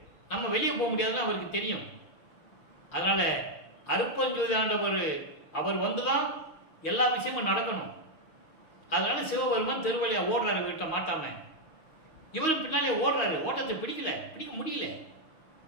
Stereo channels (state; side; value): late; right; 6.3 ms